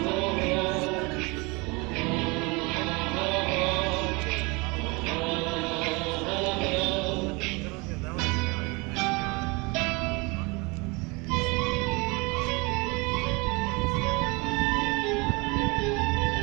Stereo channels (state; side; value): quieter; left; 27.3 dB